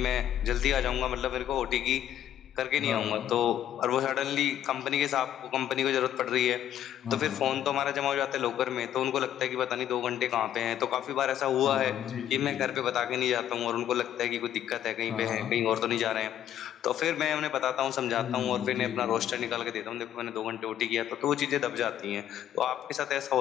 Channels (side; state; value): right; quieter; 11.0 dB